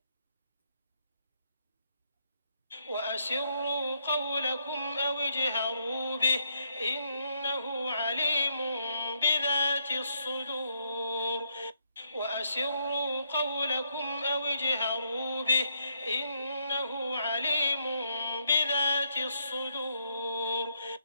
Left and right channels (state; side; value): inverted; both; correlation -0.75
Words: وأسروا قولكم أو اجهروا به إنه عليم بذات الصدور. وأسروا قولكم أو اجهروا به إنه عليم بذات الصدور.